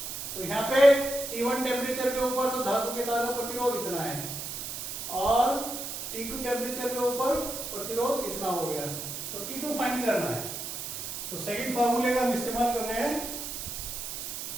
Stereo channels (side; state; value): right; noise; hiss, 6 dB below the sound